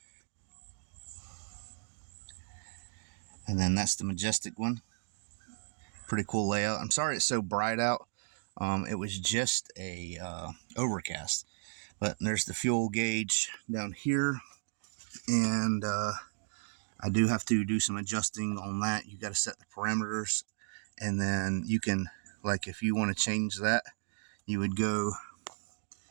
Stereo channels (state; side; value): silent; left; digital silence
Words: and then that's the majestic one. Pretty cool layout. I'm sorry it's so bright out. It was just a overcast. But there's the fuel gauge down here, and I do have to do some adjusting on that. You got to set the parameters, and then you can, like, if you want to change that, you would go,